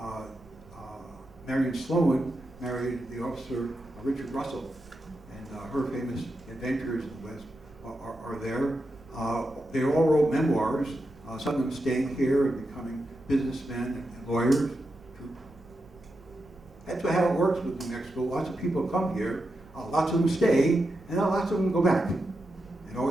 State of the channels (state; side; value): noise; right; rumble, 24 dB below the sound